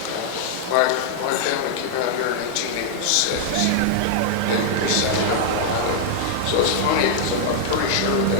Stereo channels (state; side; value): different; both; correlation -0.01